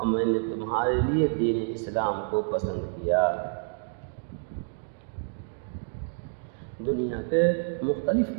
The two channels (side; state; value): left; silent; digital silence